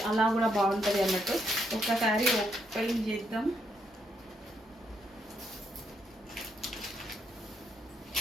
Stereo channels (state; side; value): normal; both; correlation 0.76